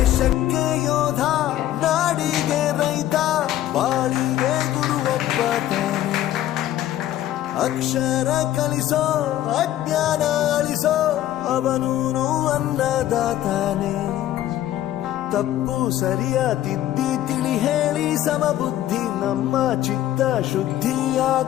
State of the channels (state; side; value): quieter; right; 13.1 dB